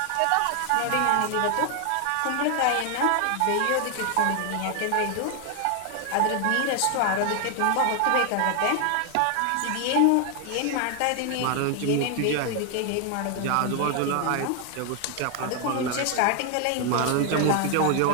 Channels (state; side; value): different; both; correlation 0.00